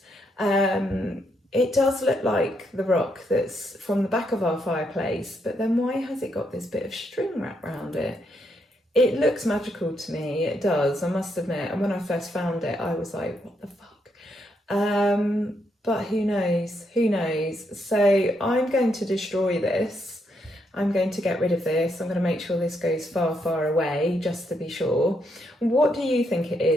It does look like the rock that's from the back of our fireplace, but then why has it got this bit of string wrapped around it? It looks magical to me, it does, I must admit. And when I first found it, I was like, what the fuck? But who knows? So I'm going to destroy this. I'm going to get rid of this. I'm going to make sure this goes far, far away, just to be sure. What do you think it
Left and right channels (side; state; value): both; normal; correlation 0.78